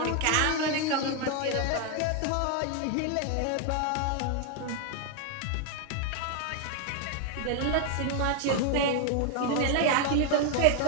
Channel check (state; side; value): different; both; correlation 0.00